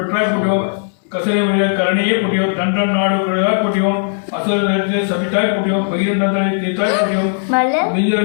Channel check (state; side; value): silent; right; digital silence